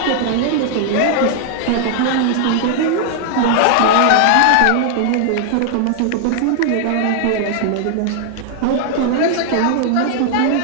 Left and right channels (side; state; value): both; different; correlation 0.00